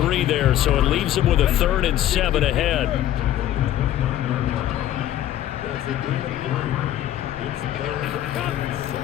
there, so it leaves him with a 3rd and 7 ahead.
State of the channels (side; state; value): right; quieter; 12.5 dB